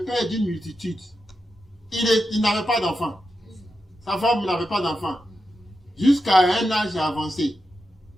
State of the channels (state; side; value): normal; both; correlation 0.89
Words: père d'une multitude. Il n'avait pas d'enfant. Sa femme n'avait pas d'enfant. Jusqu'à un âge avancé.